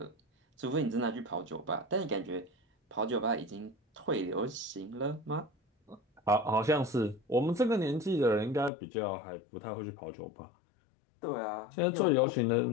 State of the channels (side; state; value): right; drops out; at 8.7 s